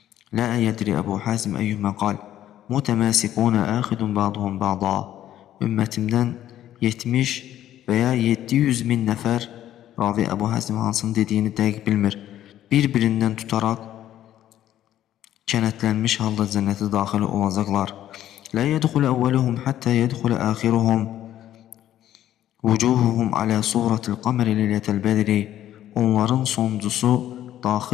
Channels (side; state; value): right; quieter; 12.1 dB